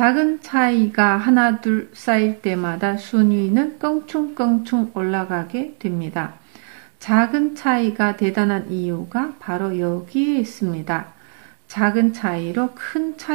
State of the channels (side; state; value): left; silent; 58 dB below the other